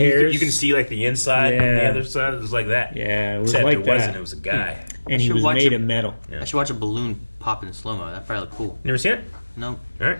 You can see like the inside and the other side. It was like that. Yeah, it was Except like it that. wasn't. It was a guy. And he was made of metal. Yeah. I should watch a balloon pop in slow-mo. That'd probably look cool. Never seen it? No. All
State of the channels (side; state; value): both; inverted; correlation -1.00